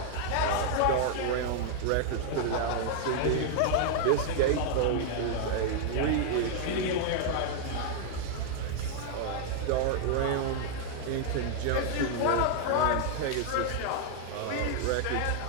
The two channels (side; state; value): both; different; correlation 0.00